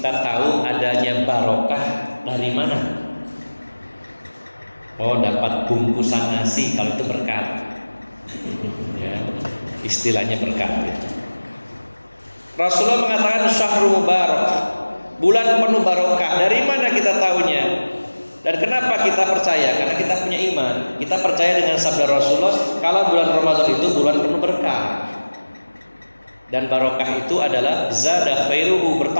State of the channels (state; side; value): inverted; both; correlation -1.00